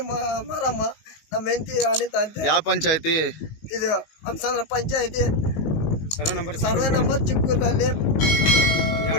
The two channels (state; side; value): late; right; 19 ms